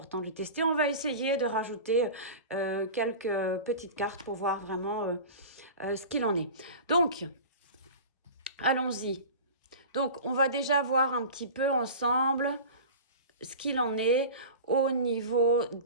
de le tester. On va essayer de rajouter quelques petites cartes pour voir vraiment ce qu'il en est. Donc, allons-y. Donc, on va déjà voir un petit peu ensemble ce qu'il en est au niveau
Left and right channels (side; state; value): both; inverted; correlation -0.34